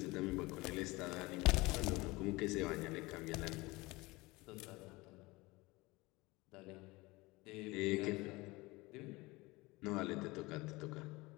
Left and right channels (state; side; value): quieter; right; 22.4 dB